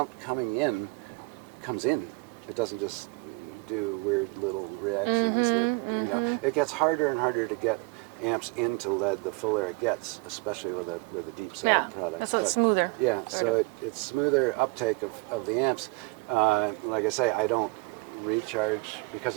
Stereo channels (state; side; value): quieter; left; 27.7 dB